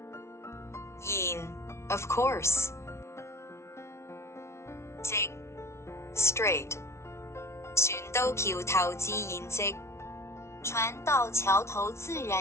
然 of course. 直 straight. 船到橋頭自然直，船到橋頭自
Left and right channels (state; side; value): late; right; 0.13 ms